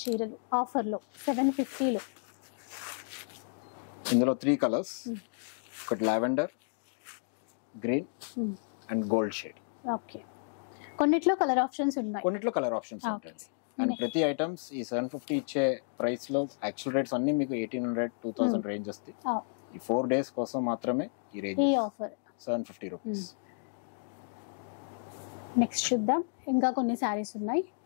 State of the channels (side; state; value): right; silent; digital silence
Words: చీరలు ఆఫర్లో 750లో. ఇందులో 3 కలర్స్, ఒకటి lavender, green and gold shade. Okay, కొన్నిట్లో కలర్ ఆప్షన్స్ ఉన్నాయి, కొన్నిట్లో కలర్ ఆప్షన్స్ ఉంటాయి. అండ్ ప్రతి ఐటమ్స్ ఈ 750 ఇచ్చే ప్రైస్ లో యాక్చువల్ రేట్స్ అన్ని మీకు 1800, 2000 రేంజ్ వస్తాయి. ఈ 4 days కోసం మాత్రమే ఈ రేంజ్, ఈ ఆఫర్ 750 రూపీస్. నెక్స్ట్ చూద్దాం, ఇంకా కొన్ని శారీస్ ఉన్నాయి.